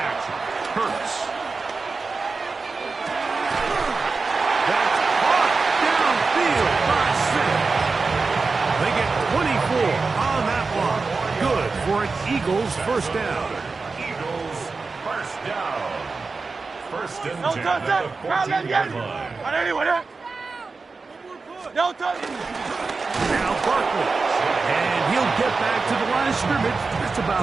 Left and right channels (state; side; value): quieter; left; 4.2 dB